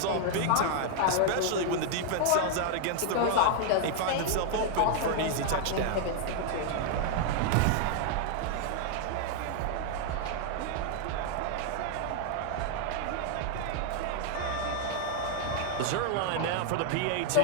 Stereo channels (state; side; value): different; both; correlation 0.00